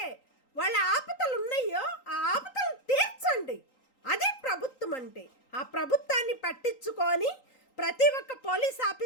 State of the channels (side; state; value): right; late; 3.8 ms